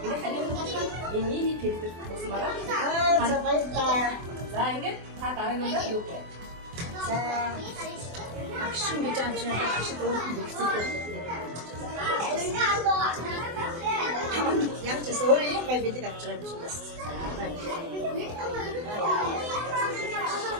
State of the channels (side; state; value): left; late; 24 ms